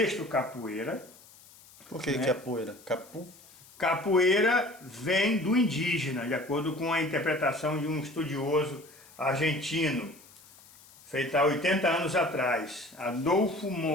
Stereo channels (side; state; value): left; noise; hiss, 24 dB below the sound